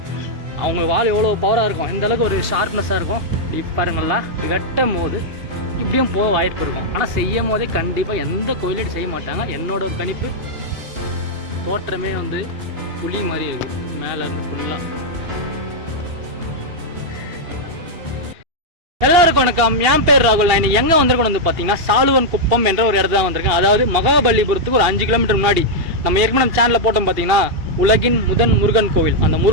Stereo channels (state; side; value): late; left; 2.8 ms